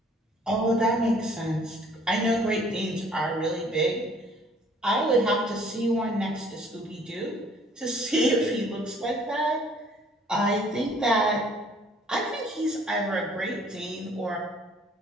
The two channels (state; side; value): normal; both; correlation 0.57